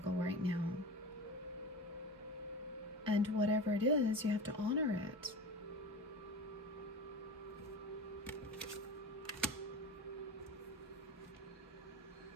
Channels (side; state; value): both; normal; correlation 0.31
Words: right now. And whatever it is, you have to honor it.